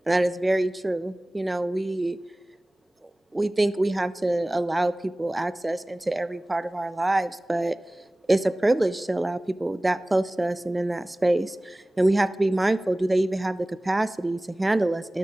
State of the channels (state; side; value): normal; both; correlation 0.98